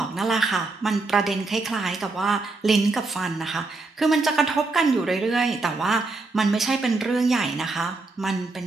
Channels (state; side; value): quieter; left; 3.5 dB